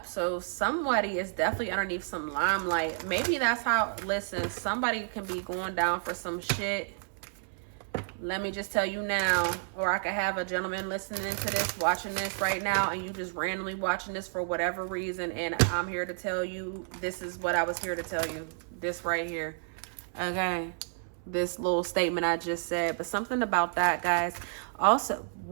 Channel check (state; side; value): silent; left; 57 dB below the other